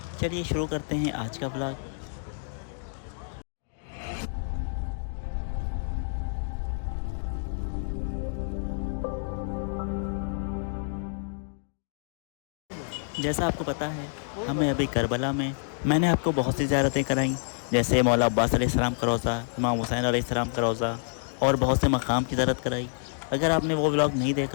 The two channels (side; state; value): right; silent; digital silence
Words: चलिए शुरू करते हैं आज का व्लॉग। जैसा आपको पता है, हमें अभी करबला में मैंने आपको बहुत सी ज़ियारतें कराई, जैसे मौला अब्बास अलैहिस्सलाम का रोज़ा, इमाम हुसैन अलैहिस्सलाम का रोज़ा और बहुत से मकाम की ज़ियारत कराई। अगर आपने वो व्लॉग नहीं